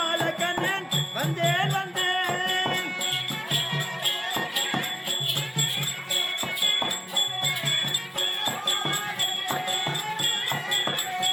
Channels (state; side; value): identical; both; correlation 1.00